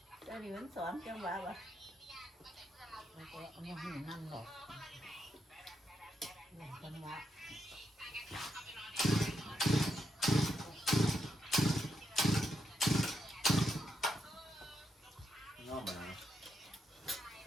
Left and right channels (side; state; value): both; normal; correlation 0.81